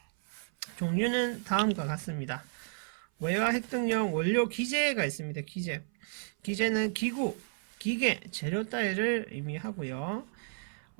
종류는 다음과 같습니다. 외화 획득용 원료 기재가 있습니다. 기재는 기구, 기계, 재료 따위를 의미하고요.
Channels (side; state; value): left; silent; 56 dB below the other